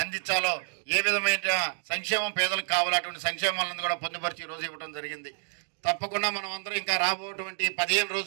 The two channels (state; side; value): silent; left; 59 dB below the other